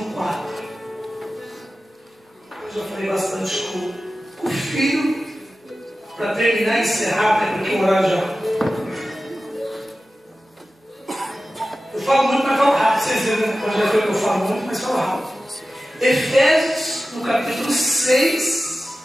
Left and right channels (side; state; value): both; normal; correlation 0.94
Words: 4. Eu já falei bastante com o filho, para terminar e encerrar, né, porque o horário já. Eu falo muito, mas falo rápido. Vocês viram, né? Pode ver que eu falo muito, mas falo rápido. Efésios, no capítulo 6,